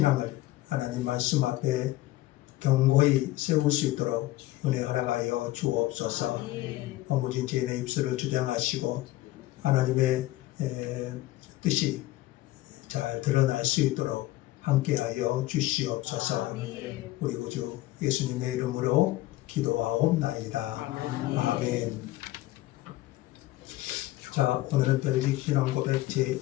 하나님 말씀 앞에 견고히 세울 수 있도록 은혜 허락하여 주옵소서. 허무진 죄인의 입술을 주장하시고 하나님의 뜻이 잘 드러날 수 있도록 함께하여 주시옵소서. 우리 구주 예수님의 이름으로 기도하옵나이다. 아멘. 자, 오늘은 벨직 신앙 고백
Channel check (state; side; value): quieter; right; 16.9 dB